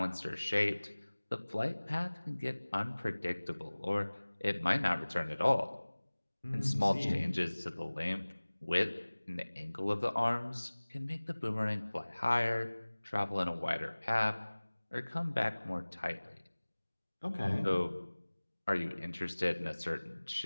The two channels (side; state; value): both; inverted; correlation -1.00